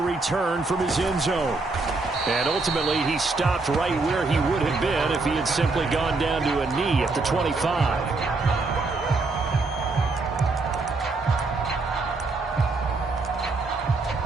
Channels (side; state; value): left; quieter; 3.6 dB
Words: from his end zone. And ultimately, he stopped right where he would have been if he had simply gone down to a knee at the 25.